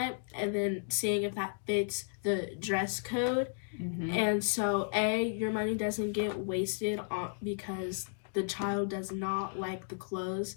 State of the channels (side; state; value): right; silent; digital silence